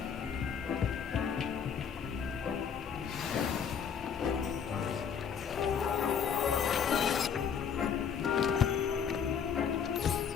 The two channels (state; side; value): quieter; right; 7.2 dB